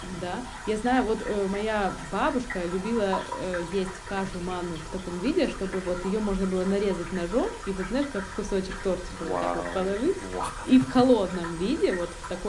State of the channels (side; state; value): both; identical; correlation 1.00